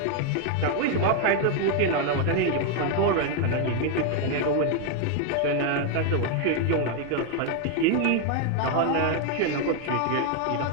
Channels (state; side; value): different; both; correlation 0.01